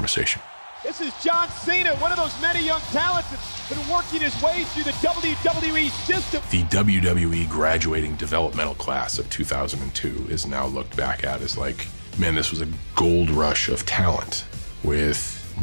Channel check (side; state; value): both; inverted; correlation -1.00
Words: This is John Cena, one of those many young talents that's been working his way through the WWE system. The WWE graduating developmental class of 2002 is now looked back at as like, man, this was a gold rush of talent with